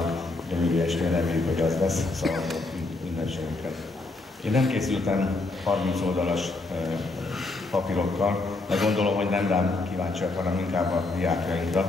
gyönyörű estén reméljük, hogy az lesz, szóval ünnepségünket. Én nem készültem 30 oldalas papírokkal, de gondolom, hogy nem rám kíváncsiak, hanem inkább a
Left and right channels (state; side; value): quieter; right; 3.2 dB